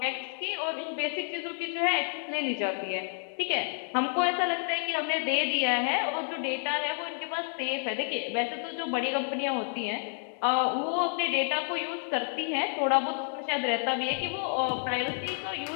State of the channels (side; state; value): right; silent; 58 dB below the other